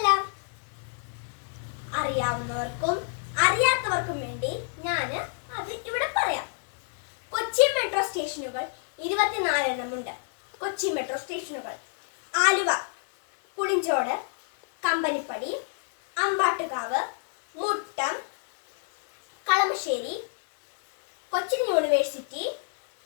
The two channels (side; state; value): right; silent; digital silence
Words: അറിയാവുന്നവർക്കും അറിയാത്തവർക്കും വേണ്ടി ഞാൻ അത് ഇവിടെ പറയാം. കൊച്ചി മെട്രോ സ്റ്റേഷനുകൾ 24 എണ്ണമുണ്ട്. കൊച്ചി മെട്രോ സ്റ്റേഷനുകൾ Aluva, Pulinchodu, Companypadi, Ambattukavu, Muttom, Kalamassery, Cochin university,